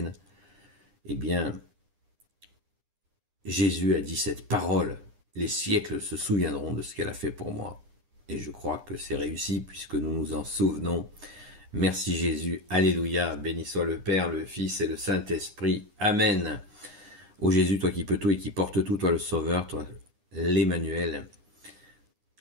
Eh bien, Jésus a dit cette parole, les siècles se souviendront de ce qu'elle a fait pour moi. Et je crois que c'est réussi puisque nous nous en souvenons. Merci Jésus, alléluia, béni soit le Père, le Fils et le Saint-Esprit. Amen. Ô Jésus, toi qui peux tout et qui portes tout, toi le Sauveur, toi l'Emmanuel.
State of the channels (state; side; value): late; left; 9.8 ms